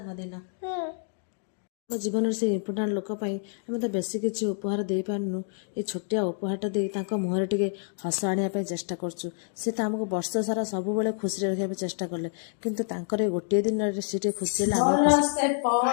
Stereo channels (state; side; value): silent; right; 59 dB below the other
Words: ଆମ ଜୀବନରେ ସେ ଇମ୍ପୋର୍ଟାଣ୍ଟ ଲୋକ ପାଇଁ ଆମେ ତ ବେଶୀ କିଛି ଉପହାର ଦେଇପାରୁନୁ। ଏ ଛୋଟିଆ ଉପହାରଟା ଦେଇ ତାଙ୍କ ମୁହଁରେ ଟିକେ ହସ ଆଣିବା ପାଇଁ ଚେଷ୍ଟା କରୁଛୁ। ସେ ତ ଆମକୁ ବର୍ଷ ସାରା ସବୁବେଳେ ଖୁସିରେ ରଖିବା ପାଇଁ ଚେଷ୍ଟା କଲେ, କିନ୍ତୁ ତାଙ୍କର ଏ ଗୋଟିଏ ଦିନରେ ସେ ଟିକେ ଖୁସି ହେଲେ ବର୍ଷେ